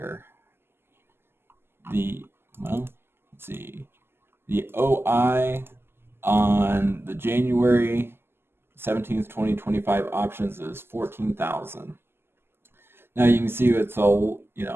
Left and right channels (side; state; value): left; late; 0.12 ms